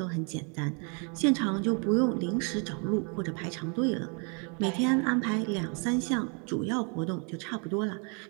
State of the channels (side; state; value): left; quieter; 36.4 dB